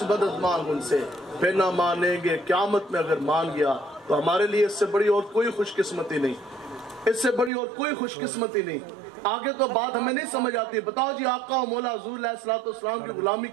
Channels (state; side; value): drops out; left; at 7.5 s